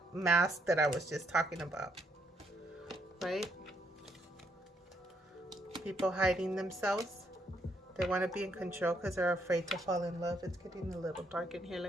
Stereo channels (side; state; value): both; normal; correlation 0.73